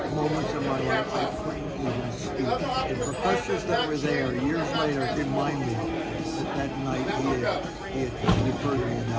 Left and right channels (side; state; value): both; identical; correlation 1.00